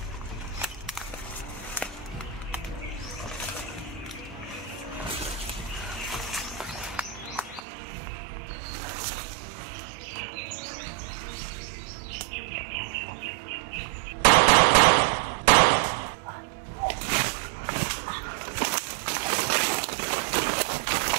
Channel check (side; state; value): left; drops out; at 7.6 s